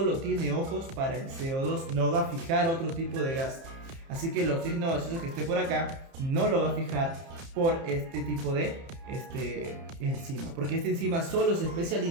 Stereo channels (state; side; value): late; left; 30 ms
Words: tiene ojos para el CO2, no va a fijar otro tipo de gas. Así que el oxígeno gaseoso que esté por acá no lo va a fijar por este tipo de enzima, porque esta enzima solo se